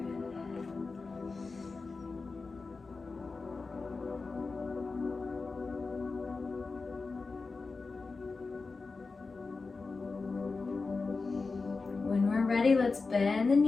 When we're ready, let's bend the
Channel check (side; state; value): right; quieter; 4.1 dB